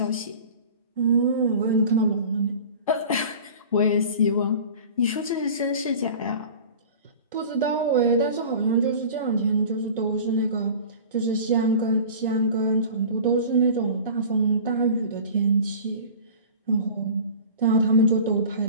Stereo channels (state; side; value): inverted; both; correlation -0.39